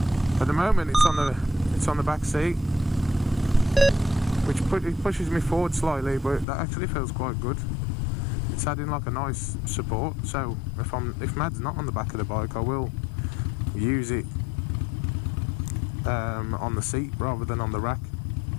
at the moment, it's on the back seat, which pushes me forward slightly, but that actually feels quite good. It's adding like a nice support. So if Mad's not on the back of the bike, I will use it on the seat rather than on the rack,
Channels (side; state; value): right; drops out; at 6.5 s